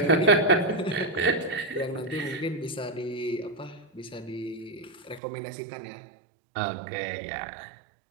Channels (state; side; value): drops out; left; at 5.2 s